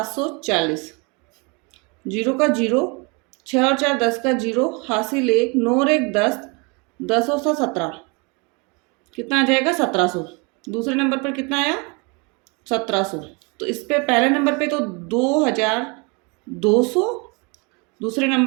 0 का 0, 6 और 4 10 का 0 हासिल 1, 9 और 1 10, 10 और 7 17, कितना आ जाएगा 1700। दूसरे नंबर पर कितना आया, 1700। तो इस पे पहले नंबर पे तो 2200, दूसरे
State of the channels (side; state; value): left; quieter; 30.7 dB